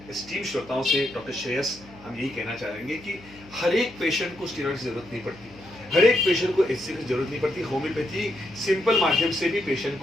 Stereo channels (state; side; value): noise; left; hum, 21 dB below the sound